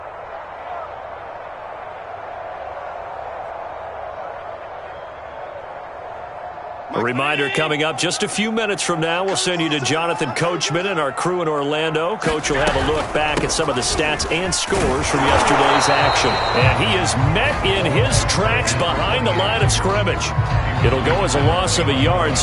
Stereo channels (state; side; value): identical; both; correlation 1.00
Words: A reminder coming up just a few minutes from now, we'll send you to Jonathan Coachman and our crew in Orlando. Coach will have a look back at some of the stats and scores from yesterday's action. And he is met in his tracks behind the line of scrimmage. It'll go as a loss of a yard,